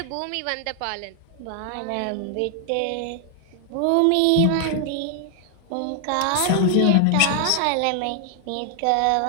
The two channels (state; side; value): different; both; correlation 0.00